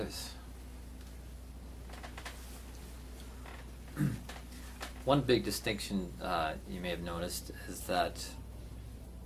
One big distinction you may have noticed is that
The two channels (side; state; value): both; identical; correlation 1.00